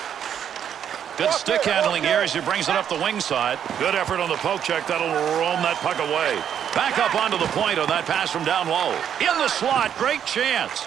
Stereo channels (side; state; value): left; quieter; 9.0 dB